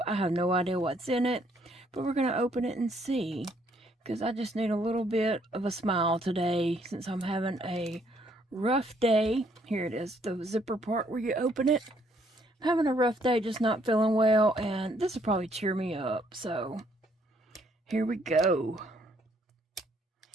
I have no idea what's in it, but we're going to open it and see, because I just need a little bit of a smile today since I'm having a rough day. Here it is, the zipper part where you open it. I'm having a rough day, just not feeling well, and this will probably cheer me up. So here we go.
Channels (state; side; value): normal; both; correlation 0.68